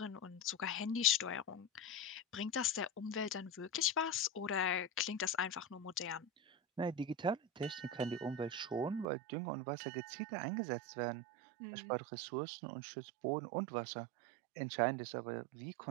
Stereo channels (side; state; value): left; drops out; at 9.1 s